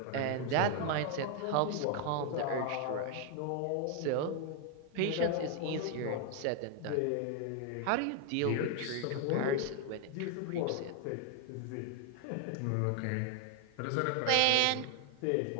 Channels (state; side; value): different; both; correlation 0.00